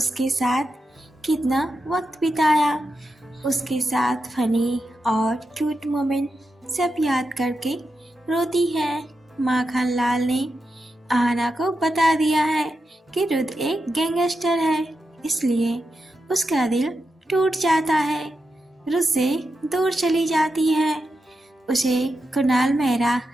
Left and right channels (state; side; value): normal; both; correlation 0.88